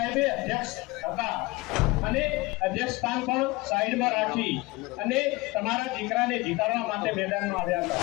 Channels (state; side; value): quieter; right; 22.3 dB